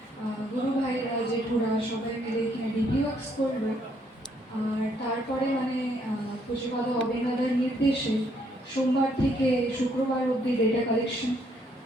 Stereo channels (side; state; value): both; normal; correlation 0.70